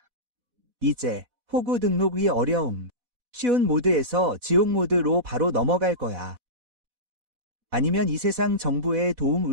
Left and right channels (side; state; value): left; late; 4.1 ms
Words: 이제 호구 등록이 어려움. 쉬운 모드에서 지옥 모드로 바로 넘어갈 거야. 아니면 이 세상 정부의